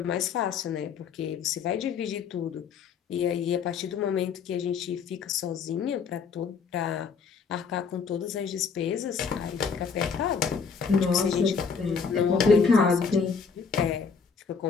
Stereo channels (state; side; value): quieter; right; 5.8 dB